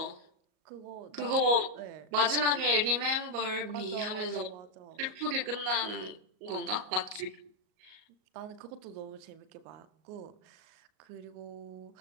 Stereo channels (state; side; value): late; left; 38 ms